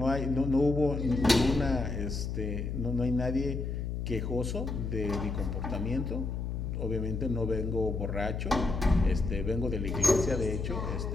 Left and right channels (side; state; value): left; noise; hum, 3 dB below the sound